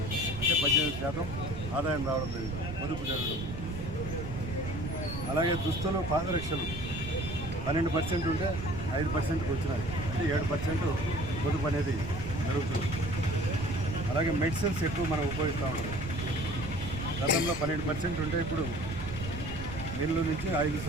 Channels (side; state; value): right; noise; rumble, 7 dB below the sound